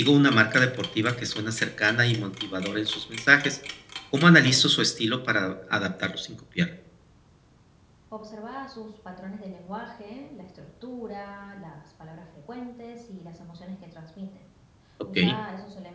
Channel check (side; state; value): both; identical; correlation 1.00